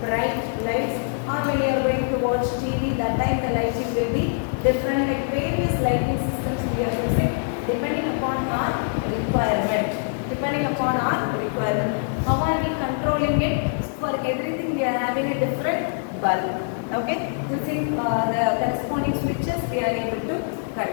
bright lights. Or when you are going to watch TV, that time the lighting will be different. Like various lighting systems we are using depending upon our requirement. How are we controlling it? For everything we are having a different bulb. Okay, using the corresponding switches we are able to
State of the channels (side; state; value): right; silent; 63 dB below the other